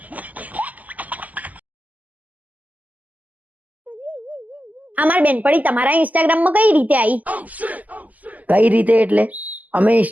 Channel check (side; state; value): left; late; 0.078 ms